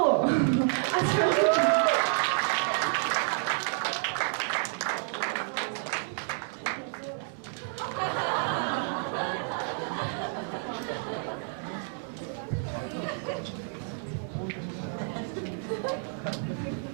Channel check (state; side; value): silent; left; 58 dB below the other